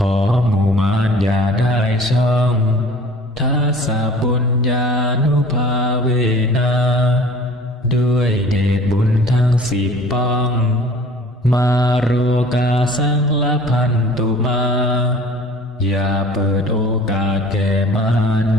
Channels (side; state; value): both; normal; correlation 0.48